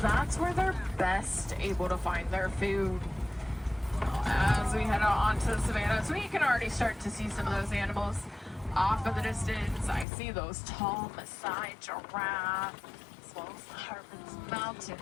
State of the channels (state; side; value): drops out; right; at 10.1 s